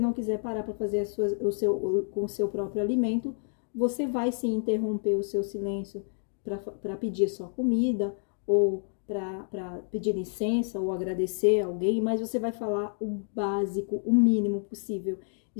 quiser parar para fazer com o seu próprio alimento, você vai sim interromper o seu silêncio para pedir sua comida, ou para pedir licença ou agradecer alguém, mas você vai falar o básico, o mínimo possível.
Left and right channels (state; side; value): silent; right; 59 dB below the other